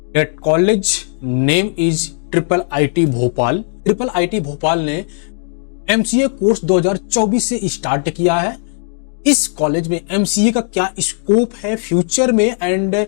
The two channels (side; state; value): right; silent; digital silence